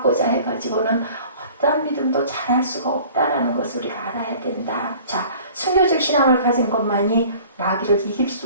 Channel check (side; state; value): both; inverted; correlation -0.48